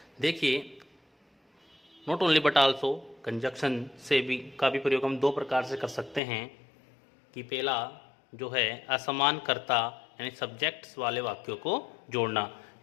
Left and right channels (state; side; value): drops out; right; at 6.2 s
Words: देखिए, not only but also conjunction से भी का भी प्रयोग हम दो प्रकार से कर सकते हैं कि पहला जो है असमान कर्ता यानी सब्जेक्ट्स वाले वाक्यों को जोड़ना,